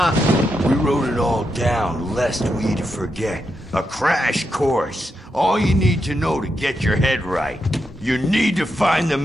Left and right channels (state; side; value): normal; both; correlation 0.84